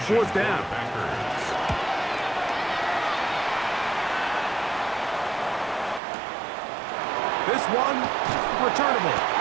fourth down. This one, returnable.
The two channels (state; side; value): drops out; left; at 6.0 s